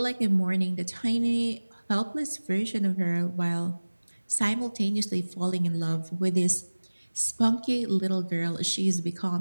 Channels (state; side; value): inverted; both; correlation -1.00